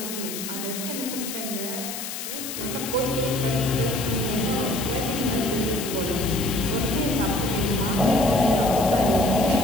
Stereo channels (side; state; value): left; noise; hiss, 7 dB below the sound